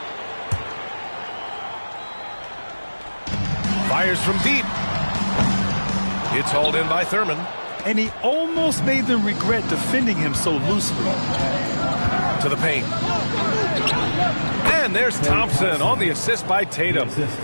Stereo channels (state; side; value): inverted; both; correlation -1.00